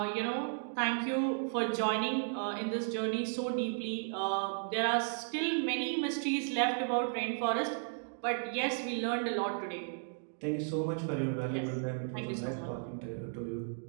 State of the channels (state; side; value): silent; left; digital silence